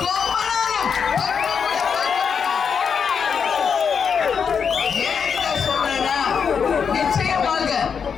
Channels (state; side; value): quieter; right; 6.5 dB